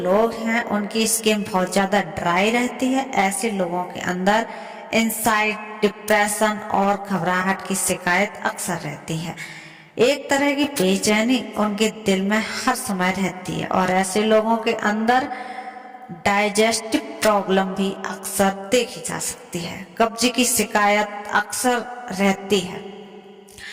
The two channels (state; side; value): identical; both; correlation 1.00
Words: हैं उनकी स्किन बहुत ज़्यादा ड्राई रहती है, ऐसे लोगों के अंदर एंजाइटी, डिप्रेशन और घबराहट की शिकायत अक्सर रहती है। एक तरह की बेचैनी उनके दिल में हर समय रहती है और ऐसे लोगों के अंदर डाइजेस्टिव प्रॉब्लम भी अक्सर देखी जा सकती है। कब्ज की शिकायत अक्सर रहती है।